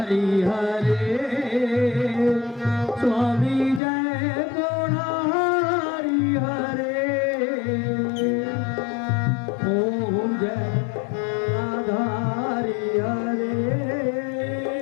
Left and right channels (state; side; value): drops out; right; at 3.8 s